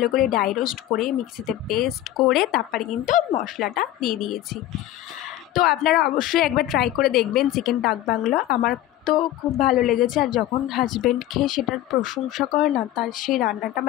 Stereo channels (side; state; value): right; quieter; 13.7 dB